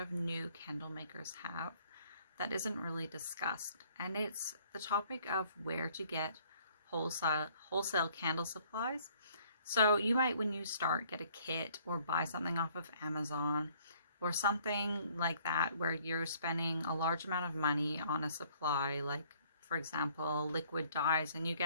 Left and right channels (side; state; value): both; inverted; correlation -0.60